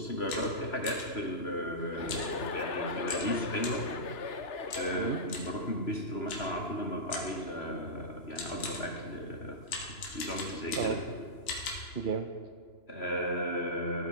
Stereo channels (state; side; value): late; right; 2.9 ms